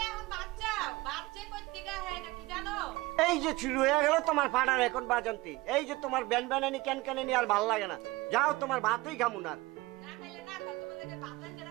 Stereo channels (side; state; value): left; quieter; 20.9 dB